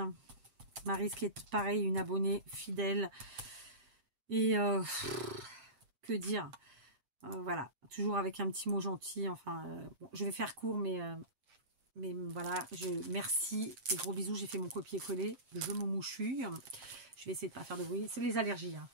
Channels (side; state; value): left; late; 8.6 ms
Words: Maryse qui est pareil, une abonnée fidèle. Et que dire. Voilà. Toujours avec un petit mot gentil. Enfin, bon, je vais faire court, mais voilà, merci et gros bisous, j'ai fait mon copier-coller, je me mouchouille. Je vais essayer de pas faire de bruit, c'est les allergies, hein.